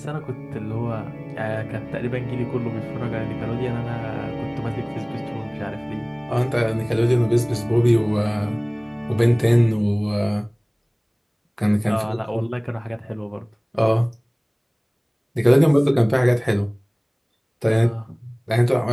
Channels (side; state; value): both; identical; correlation 1.00